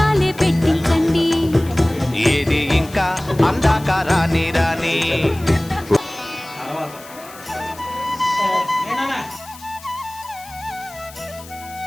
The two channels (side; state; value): left; noise; hiss, 19 dB below the sound